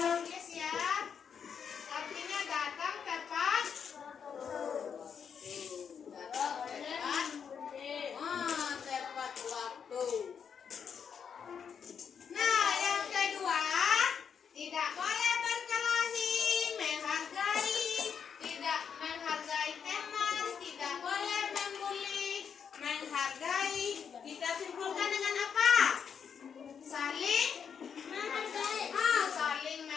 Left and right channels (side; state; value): right; quieter; 7.1 dB